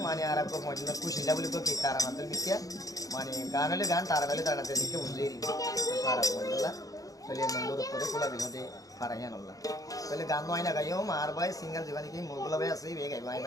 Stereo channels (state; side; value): late; right; 0.17 ms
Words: মানে আর আপনার পয়েন্ট কুশিলা বলে কি তারা মাত্র মিথ্যা মানে গান হলে গান তারা হলে তারা দেখে বুঝলেই পারা পয়েন্টলা তাহলে মন্দর উপরে খোলা বিনোদে পারাইয়া নল্লা তাহলে গান নয় না গাইও আর ভাই সিঙ্গার জীবনে কি মোগুলা ভাই আছে বে গাইব আই